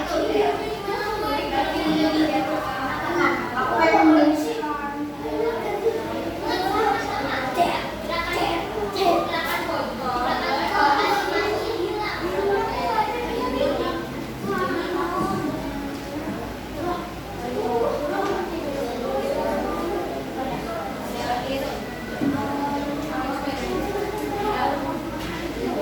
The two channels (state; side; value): identical; both; correlation 1.00